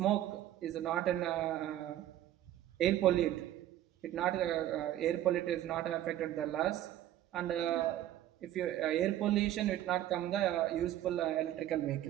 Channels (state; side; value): quieter; left; 12.8 dB